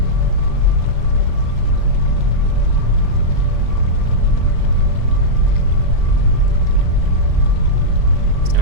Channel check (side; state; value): left; late; 40 ms